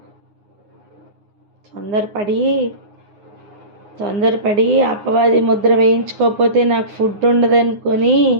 తొందరపడి అపవాది ముద్ర వేయించుకోకపోతే నాకు ఫుడ్ ఉండదనుకొని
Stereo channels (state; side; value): late; left; 9.6 ms